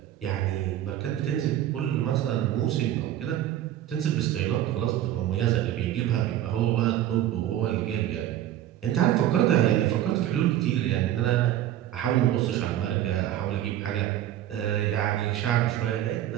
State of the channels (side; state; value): left; quieter; 12.4 dB